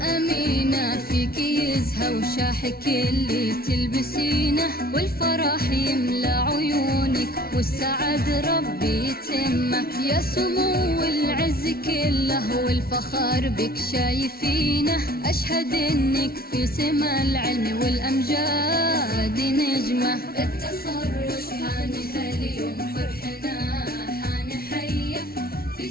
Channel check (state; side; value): late; right; 0.44 ms